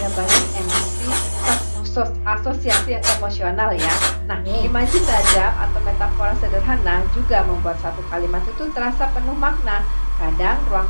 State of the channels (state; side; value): inverted; both; correlation -1.00